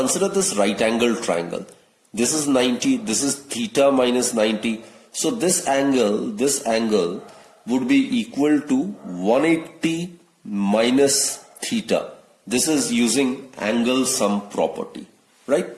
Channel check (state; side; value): identical; both; correlation 1.00